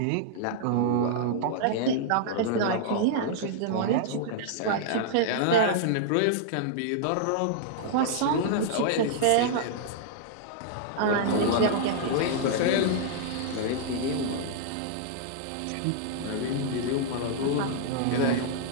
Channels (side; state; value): both; different; correlation -0.01